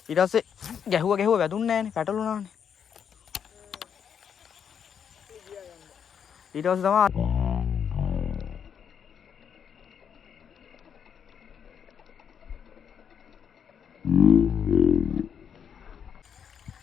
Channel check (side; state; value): right; quieter; 7.7 dB